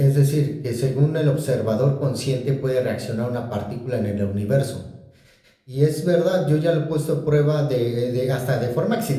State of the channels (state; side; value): identical; both; correlation 1.00